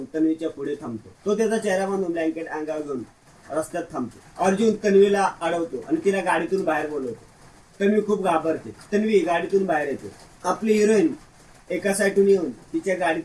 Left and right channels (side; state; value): both; identical; correlation 1.00